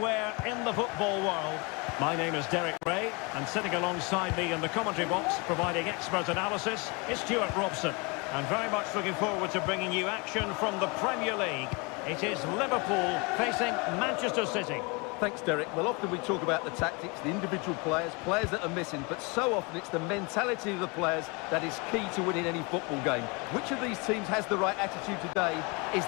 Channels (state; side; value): quieter; right; 29.4 dB